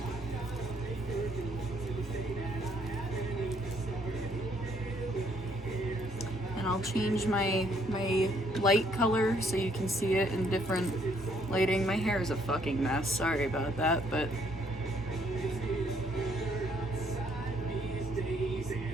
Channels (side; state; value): both; normal; correlation 0.68